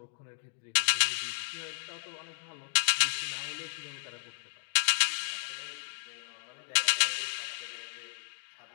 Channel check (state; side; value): silent; right; digital silence